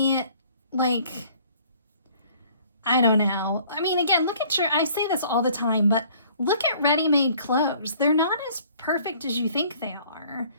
like, I don't know. I mean, again, look at I say this all the time, but look at ready-made clothes. They're not as perfect as you think they are.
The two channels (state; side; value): inverted; both; correlation -0.55